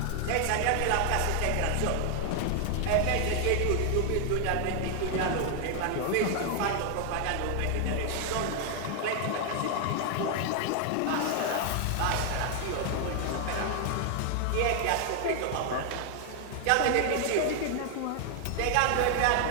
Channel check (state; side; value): different; both; correlation 0.00